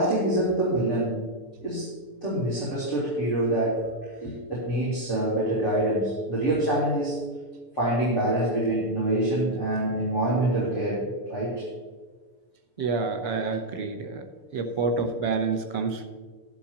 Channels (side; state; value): right; late; 6.8 ms